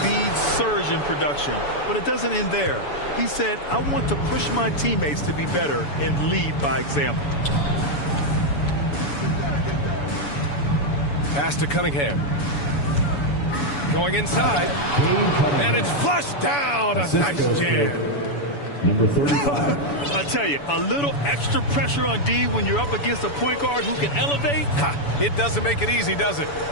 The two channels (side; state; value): right; late; 7.0 ms